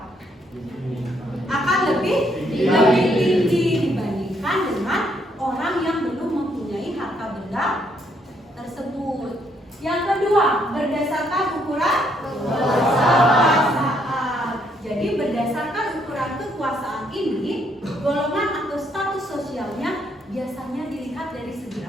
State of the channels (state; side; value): normal; both; correlation 0.71